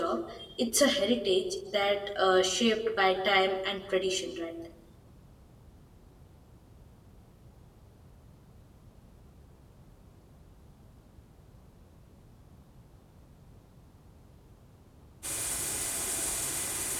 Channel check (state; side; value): identical; both; correlation 1.00